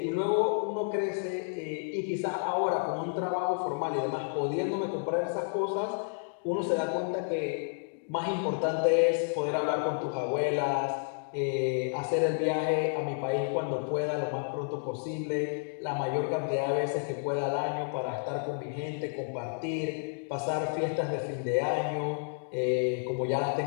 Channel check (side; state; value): right; silent; digital silence